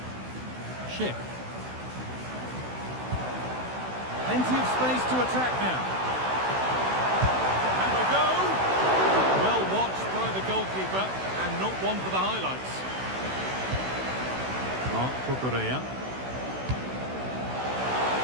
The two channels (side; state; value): left; late; 16 ms